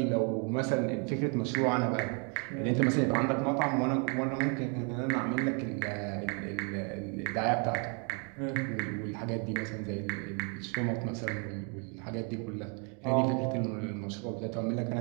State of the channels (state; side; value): quieter; left; 36.8 dB